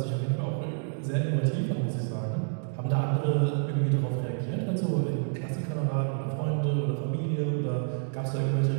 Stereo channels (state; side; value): silent; left; 59 dB below the other